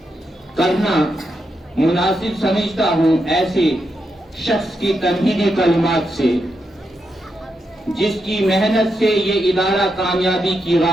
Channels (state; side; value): normal; both; correlation 0.84